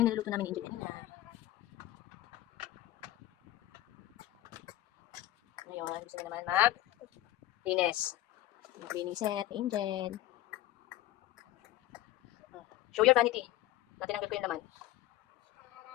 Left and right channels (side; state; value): right; quieter; 14.7 dB